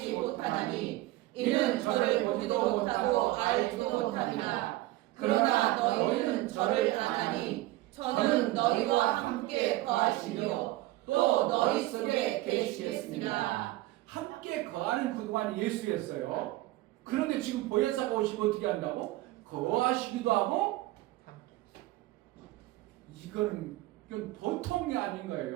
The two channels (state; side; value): quieter; left; 17.7 dB